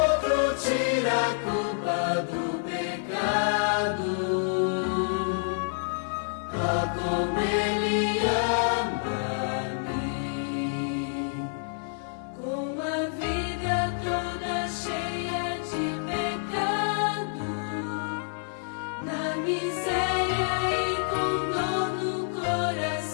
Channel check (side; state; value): right; silent; digital silence